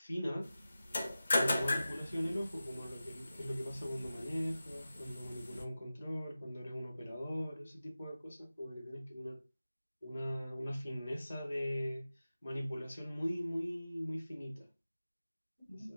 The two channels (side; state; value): both; inverted; correlation -0.95